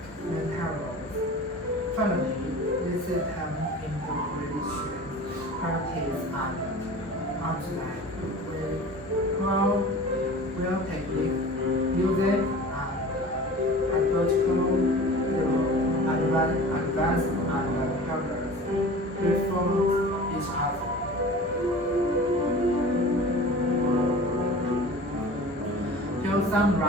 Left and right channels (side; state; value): both; normal; correlation 0.39